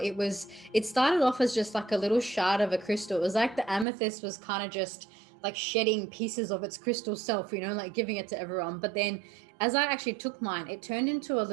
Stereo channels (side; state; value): left; drops out; at 3.9 s